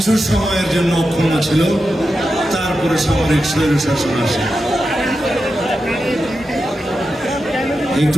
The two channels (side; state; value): both; normal; correlation 0.89